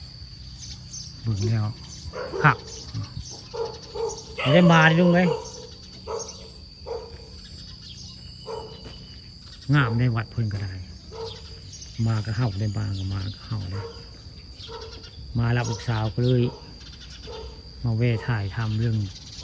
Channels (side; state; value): both; identical; correlation 1.00